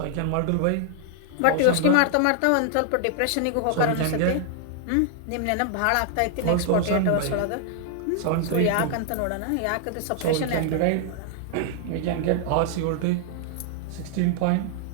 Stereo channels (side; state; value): both; different; correlation 0.00